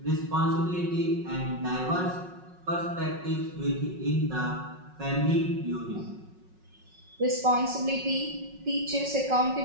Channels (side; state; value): left; late; 5.4 ms